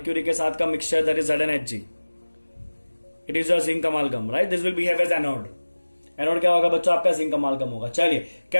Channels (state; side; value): inverted; both; correlation -1.00